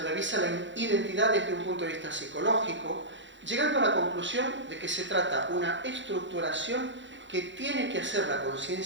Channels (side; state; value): left; late; 0.54 ms